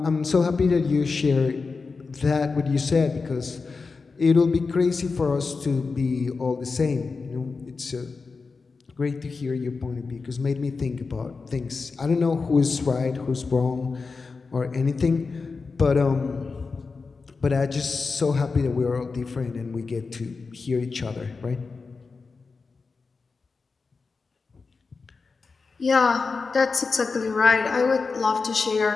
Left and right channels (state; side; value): quieter; right; 4.5 dB